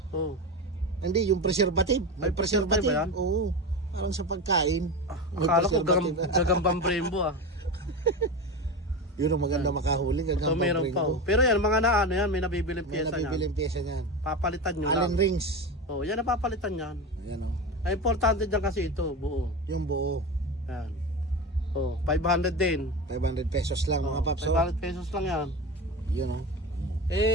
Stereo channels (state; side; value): normal; both; correlation 0.23